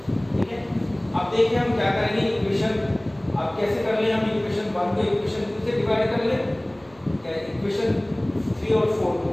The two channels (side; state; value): right; noise; hum, 29 dB below the sound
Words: ठीक है, अब देखिए हम क्या करेंगे इक्वेशन, अब कैसे कर ले हम इक्वेशन 1 को इक्वेशन 2 से डिवाइड कर ले, क्या इक्वेशन 3 और 4 को